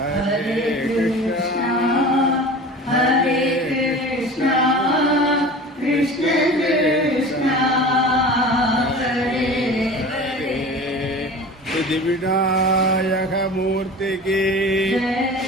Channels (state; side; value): normal; both; correlation 0.37